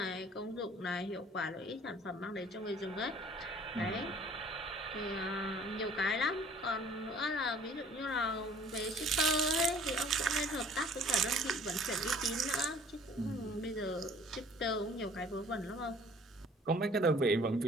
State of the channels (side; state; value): both; normal; correlation 0.53